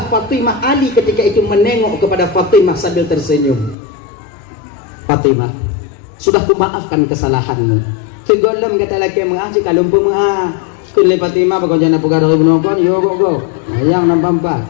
Fatimah Ali ketika itu menengok kepada Fatimah sambil tersenyum. Fatimah sudah kumaafkan kesalahanmu segolem kata laki mengasih kalau pemuah kun le Fatimah bago jana pugar do bunokon yo go yang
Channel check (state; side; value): drops out; right; at 3.8 s